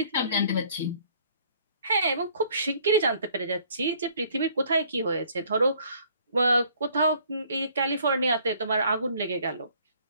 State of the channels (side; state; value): both; inverted; correlation -0.60